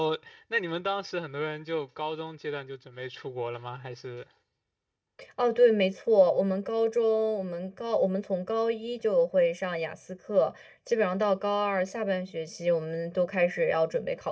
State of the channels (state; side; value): identical; both; correlation 1.00